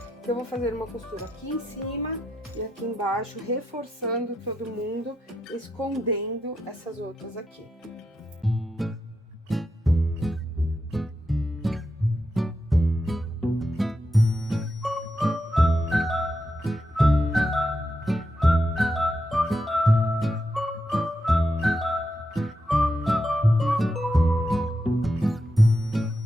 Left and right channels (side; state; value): both; normal; correlation 0.85